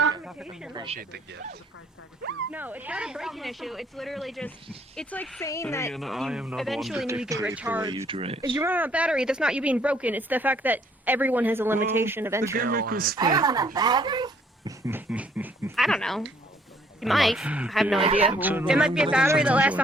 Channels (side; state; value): both; normal; correlation 0.64